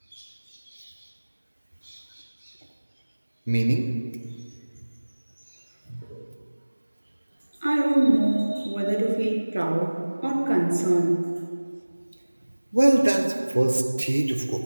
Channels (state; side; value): inverted; both; correlation -1.00